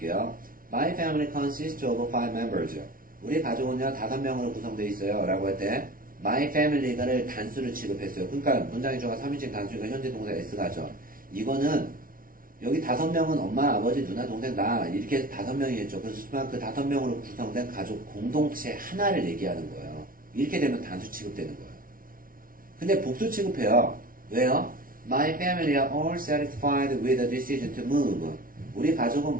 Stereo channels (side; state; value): left; late; 0.41 ms